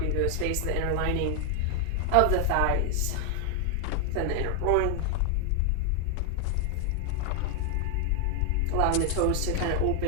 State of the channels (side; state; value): both; different; correlation 0.01